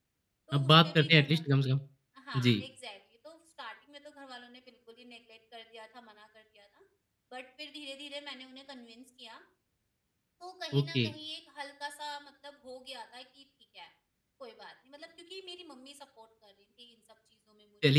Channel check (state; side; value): identical; both; correlation 1.00